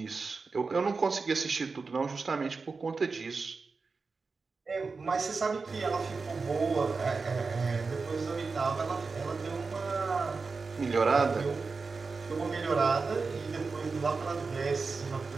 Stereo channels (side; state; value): left; quieter; 4.4 dB